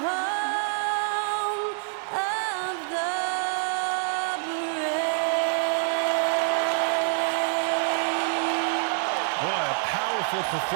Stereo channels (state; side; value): silent; left; digital silence